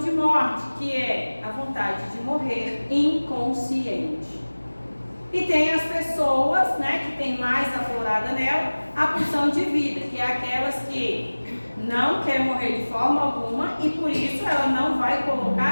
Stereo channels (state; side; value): inverted; both; correlation -1.00